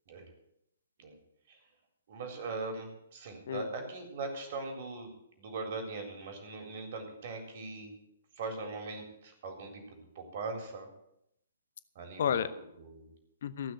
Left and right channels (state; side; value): inverted; both; correlation -0.50